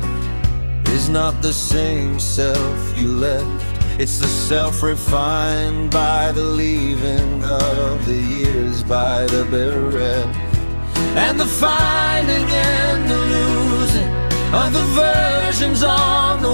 is not the same self you left. It's the self refined by the leaving of the years, by the bereft, and the finding and the losing of the versions on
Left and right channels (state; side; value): inverted; both; correlation -1.00